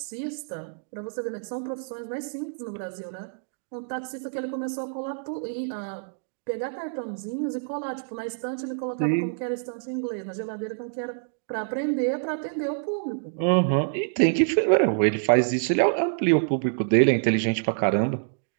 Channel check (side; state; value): left; silent; digital silence